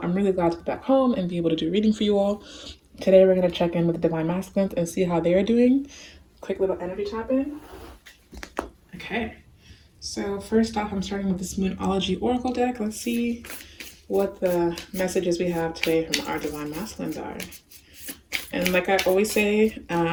I'm really glad to be back home and be able to do a reading for you all. Today, we're going to check in with the Divine Masculines and see how they're doing. Quick little energy tap in. Okay. So first off, I'm starting with this Moonology Oracle deck. Let's see what the messages we have today from our Divine Masculines are. And like I always say,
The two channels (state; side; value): identical; both; correlation 1.00